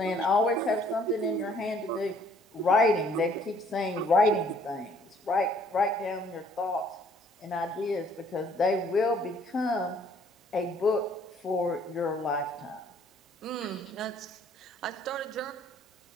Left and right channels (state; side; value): normal; both; correlation 0.61